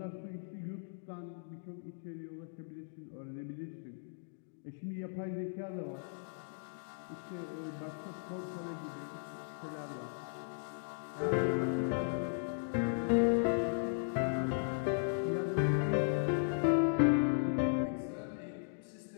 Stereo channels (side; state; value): right; silent; digital silence